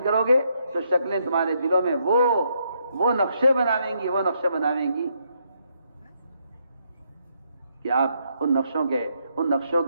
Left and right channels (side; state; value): both; inverted; correlation -0.75